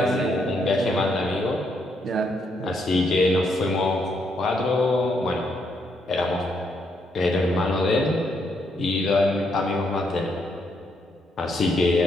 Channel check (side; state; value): both; normal; correlation 0.75